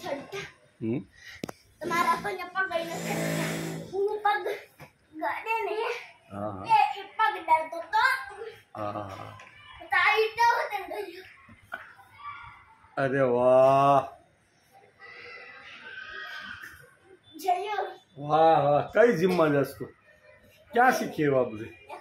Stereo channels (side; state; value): both; identical; correlation 1.00